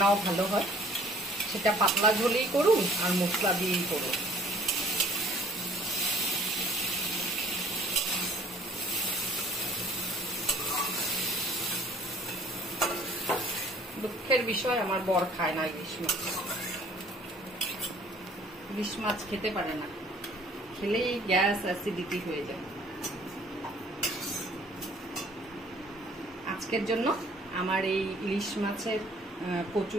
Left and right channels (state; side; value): normal; both; correlation 0.56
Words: ভালো হয়, সেটা পাতলা ঝোলেই করুন আর মশলা দিয়েই করুন। দুঃখের বিষয় আমার বর খায় না ইলিশ মাছ, ইলিশ মাছ খেতে পারে না, খেলেই গ্যাস অ্যাসিডিটি হয়ে যায়। আজকের জন্য আমার এই